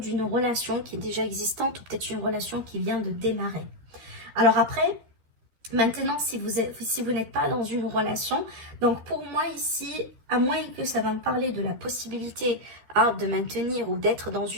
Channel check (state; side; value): late; left; 13 ms